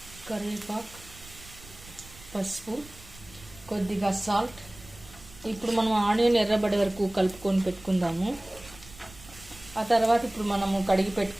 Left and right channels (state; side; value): noise; right; rumble, 20 dB below the sound